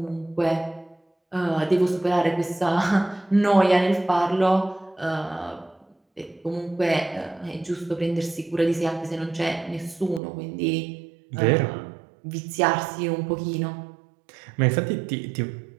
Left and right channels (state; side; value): drops out; left; at 10.2 s